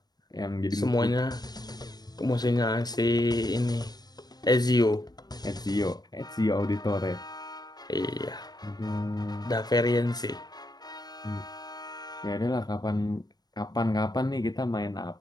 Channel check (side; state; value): right; late; 0.19 ms